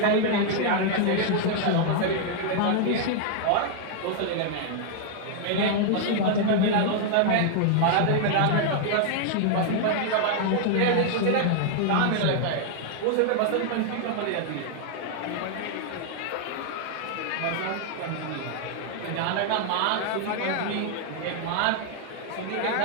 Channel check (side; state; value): both; different; correlation 0.00